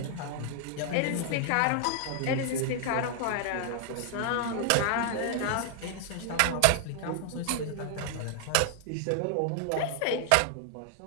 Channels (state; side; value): different; both; correlation 0.00